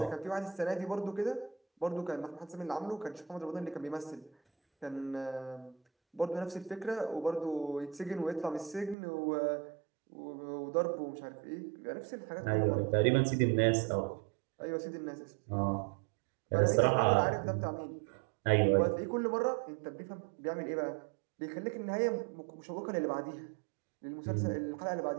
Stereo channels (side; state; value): left; drops out; at 9.0 s